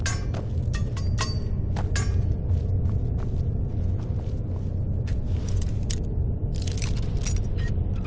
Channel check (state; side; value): identical; both; correlation 1.00